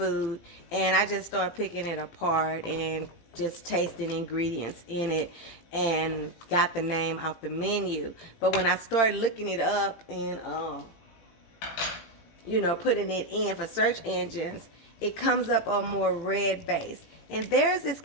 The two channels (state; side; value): late; right; 18 ms